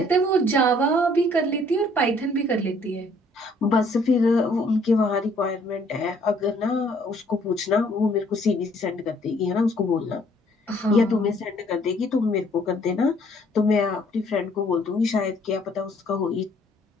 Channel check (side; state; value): both; normal; correlation 0.62